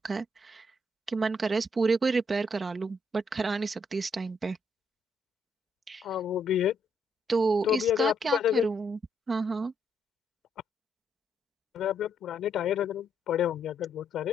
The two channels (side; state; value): both; normal; correlation 0.74